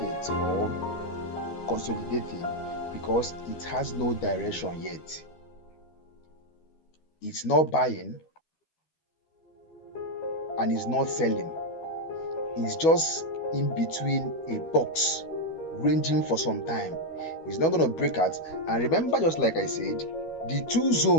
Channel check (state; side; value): late; right; 12 ms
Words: or consolidating? Because it has no direction yet. It's not buying and it's not selling. It's just in between a box, ranging for some time. It's not going to break out. And remember, just like I said, the two